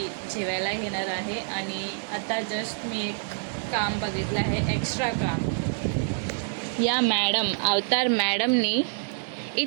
जेवायला घेणार आहे. आणि आता जस्ट मी एक काम बघितलं आहे, एक्स्ट्रा काम. या मॅडम, अवतार मॅडमनी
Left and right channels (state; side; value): silent; left; digital silence